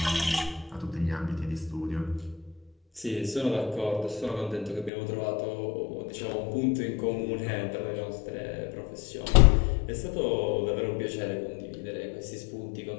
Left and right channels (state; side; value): drops out; right; at 4.9 s